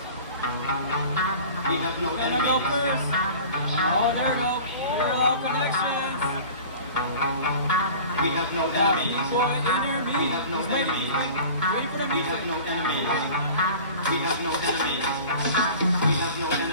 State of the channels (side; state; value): both; inverted; correlation -0.41